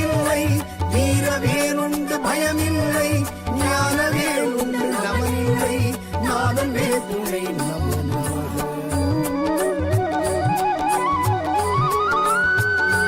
வீர வேறுண்டு பயமில்லை ஞான வேறுண்டு நமனில்லை நாதன் வேற்றுமை நமோ நமக.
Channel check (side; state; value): both; identical; correlation 1.00